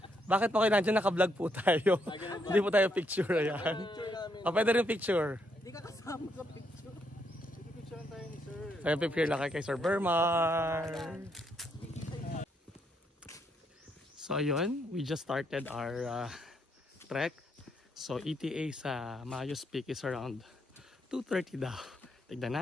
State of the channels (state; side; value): normal; both; correlation 0.75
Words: Bakit po kayo nandiyan? Naka-vlog po tayo. Hindi po tayo picture. Ayan. O, pwede rin picture. Hindi ka kasama sa picture. Sige, picture tayo ni sir. So, picture lang kay Sir Bermar. So, ayun. We just started our trek. So, ETA sa Mayos Peak is around 2:30 daw. Tignan